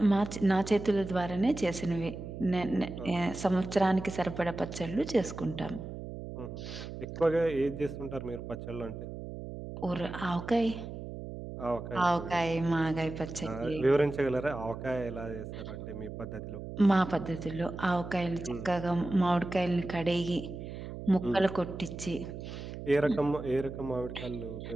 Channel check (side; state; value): right; noise; hum, 9 dB below the sound